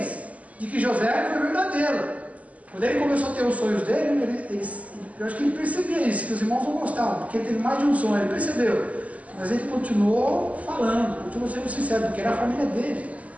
de que José foi verdadeiro. Quando ele começou a ter os sonhos dele, eu acho que ele percebia isso, que os irmãos não gostavam, porque ele teve mais de um sonho, ele percebeu. Mas ele continuou falando, continuou sendo sincero, porque era a família dele.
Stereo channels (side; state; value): left; late; 0.071 ms